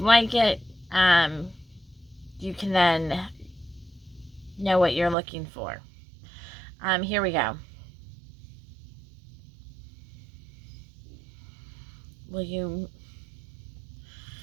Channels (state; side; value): drops out; left; at 5.2 s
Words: it, you can then know what you're looking for. Here we go.